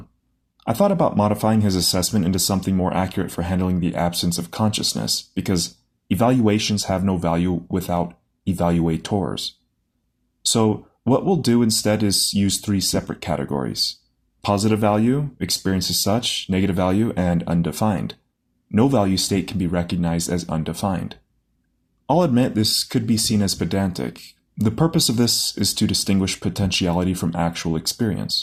I thought about modifying his assessment into something more accurate for handling the absence of consciousness, because evaluations have no value without evaluators. So what we'll do instead is use three separate categories: positive value, experience as such, negative value, and undefined. No value state can be recognized as undefined. I'll admit this could be seen as pedantic. The purpose of this is to distinguish potentiality from actual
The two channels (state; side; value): identical; both; correlation 1.00